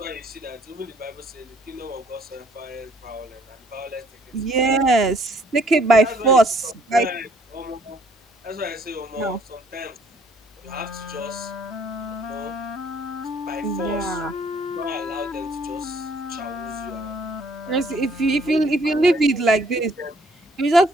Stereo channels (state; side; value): normal; both; correlation 0.63